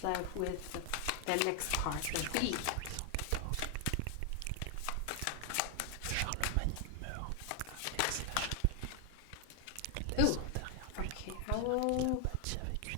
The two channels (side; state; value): both; different; correlation 0.00